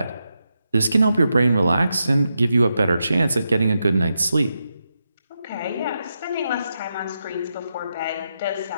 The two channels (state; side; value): inverted; both; correlation -0.86